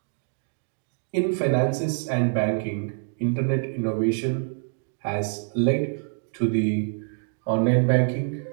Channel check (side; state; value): left; silent; 61 dB below the other